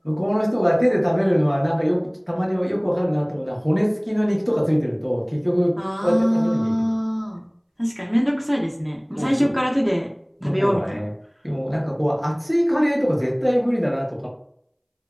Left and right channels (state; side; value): identical; both; correlation 1.00